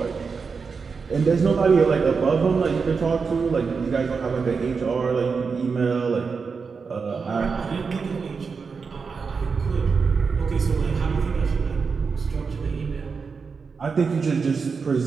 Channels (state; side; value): quieter; left; 5.2 dB